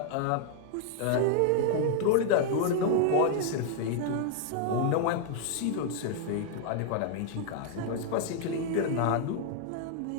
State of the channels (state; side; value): different; both; correlation -0.01